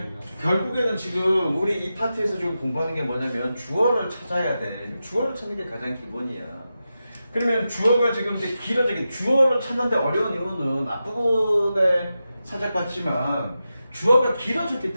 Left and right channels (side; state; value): both; inverted; correlation -0.91